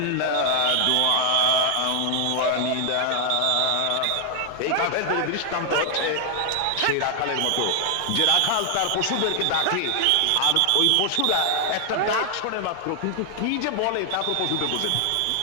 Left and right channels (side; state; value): both; different; correlation 0.00